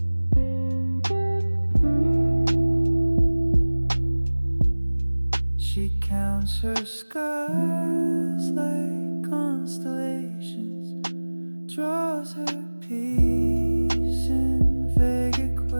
She counts her scars like constellations, draws her peace in vague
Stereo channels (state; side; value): inverted; both; correlation -1.00